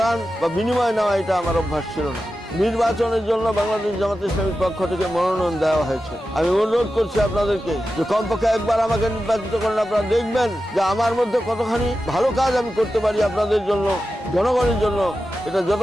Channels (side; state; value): both; normal; correlation 0.92